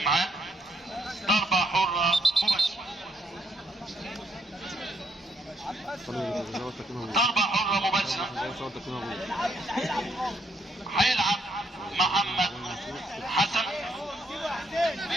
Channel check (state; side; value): normal; both; correlation 0.72